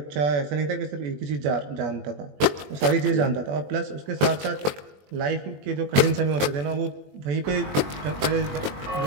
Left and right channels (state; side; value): late; left; 21 ms